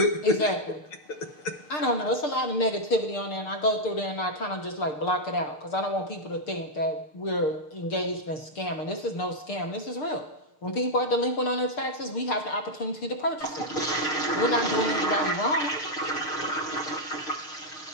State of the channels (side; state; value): right; late; 6.6 ms